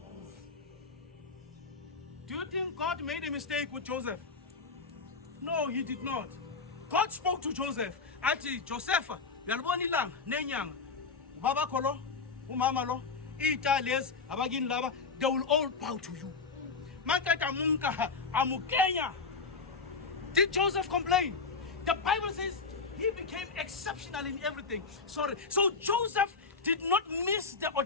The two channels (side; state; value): right; quieter; 4.6 dB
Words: Do you think God made a mistake with Joseph? No, he did not. God spoke to Joseph. Ati Joseph, yalibona ilanga nenyanga. Baba kolo, umama lo, iitales, abagini laba, they will all bow to you. Makata munka amukenya. Did Joseph complain? The Bible says he became exceptional in everything. So Joseph did not miss the